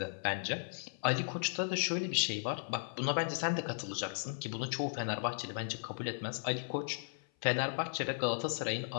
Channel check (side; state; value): right; silent; 54 dB below the other